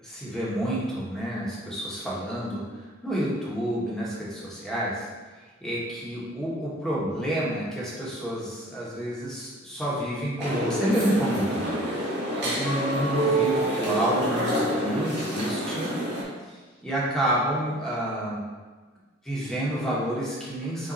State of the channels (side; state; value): both; normal; correlation 0.48